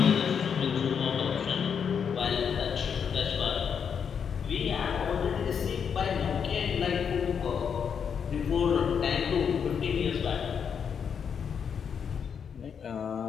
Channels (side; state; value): right; quieter; 7.1 dB